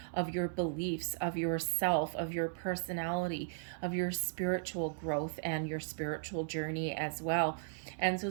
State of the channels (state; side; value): silent; left; digital silence